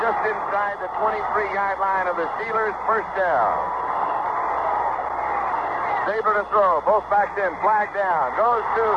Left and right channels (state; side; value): identical; both; correlation 1.00